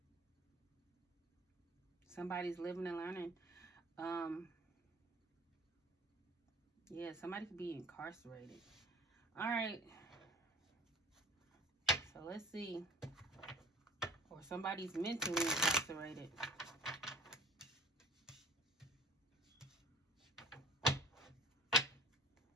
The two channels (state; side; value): normal; both; correlation 0.48